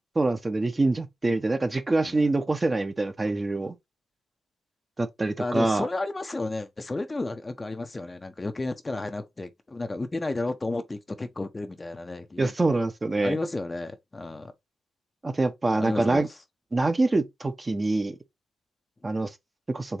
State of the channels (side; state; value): both; normal; correlation 0.96